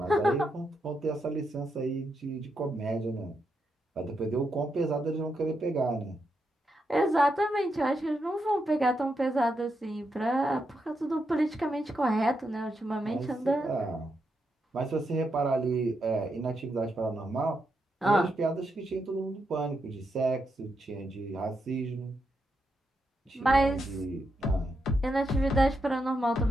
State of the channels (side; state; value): both; normal; correlation 0.83